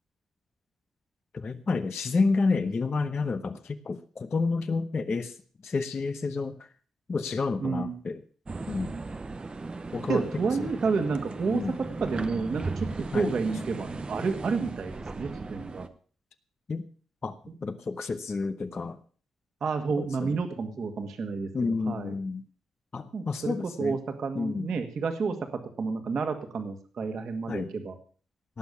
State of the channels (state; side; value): normal; both; correlation 0.86